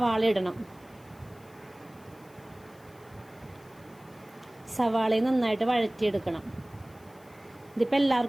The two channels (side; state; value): left; noise; hiss, 28 dB below the sound